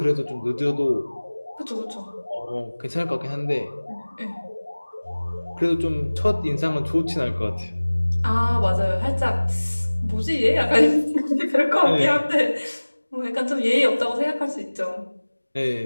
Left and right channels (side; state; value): both; inverted; correlation -1.00